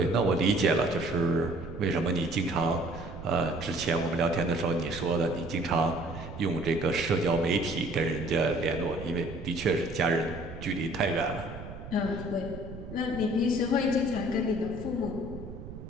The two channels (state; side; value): noise; right; rumble, 12 dB below the sound